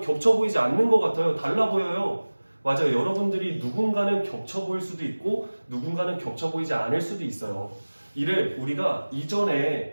겹쳐 보이지 않는 것 같아요. 달라 보여요. 맞아요. 여러분들이 누군가는 겹쳐 보일 수도 있고 누군가는 겹쳐 보이지 않을 수도 있어요. 이를 우리가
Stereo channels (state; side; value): inverted; both; correlation -1.00